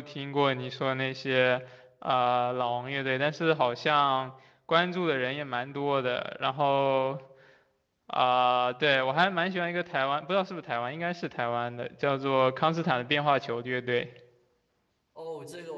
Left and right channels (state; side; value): identical; both; correlation 1.00